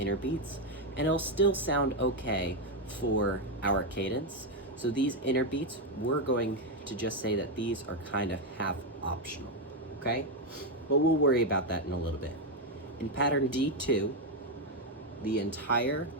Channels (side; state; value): both; normal; correlation 0.05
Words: beats and it'll still sound okay for our cadence, So these inner beats, we're going to just say that these are kind of half optional, okay? But we'll worry about that in a little bit. In pattern D2, the entire